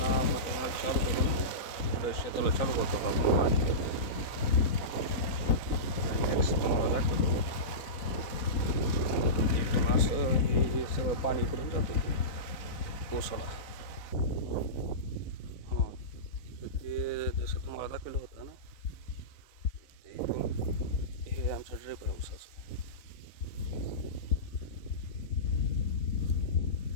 मोठं चालू करून पुढे शेताला चालू करतो आपण पाणी. नेक्स्ट तुम्हाला दाखवतो. इथून असं हे सगळं पाणी इकडून जातं ऊसाला. हां, ते जसं तुम्हाला दाखवलं होतं ना, ते इथून हे आमचं ड्रिप आहे ऊसाचं.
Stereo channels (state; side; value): late; right; 4.0 ms